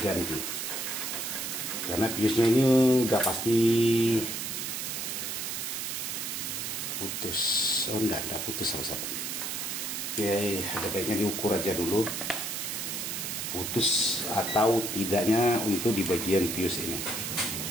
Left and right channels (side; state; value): right; noise; hiss, 3 dB below the sound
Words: karena piusnya ini udah pasti putus. Oh enggak putus sahabat. Oke, ada baiknya diukur aja dulu putus atau tidaknya untuk di bagian fuse ini.